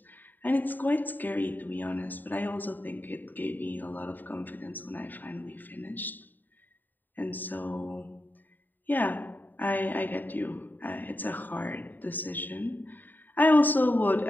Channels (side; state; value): right; late; 0.089 ms